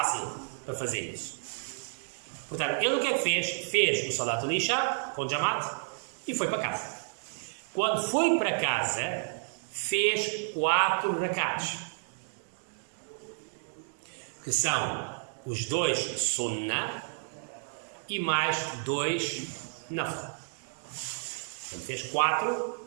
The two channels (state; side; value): silent; left; digital silence